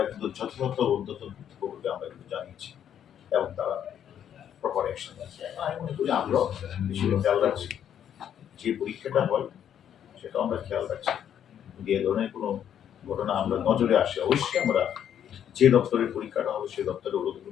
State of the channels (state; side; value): quieter; right; 9.5 dB